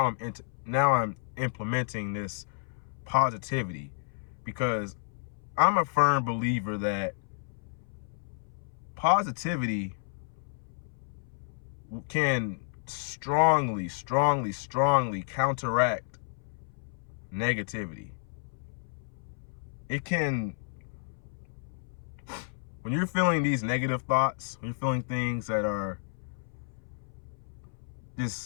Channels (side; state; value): right; silent; 57 dB below the other